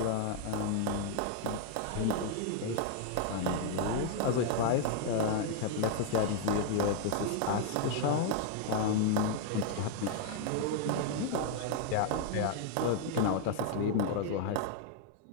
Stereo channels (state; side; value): different; both; correlation 0.00